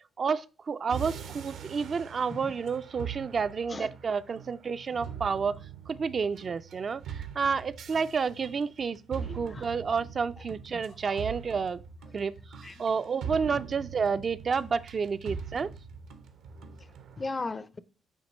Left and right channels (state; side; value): quieter; left; 5.1 dB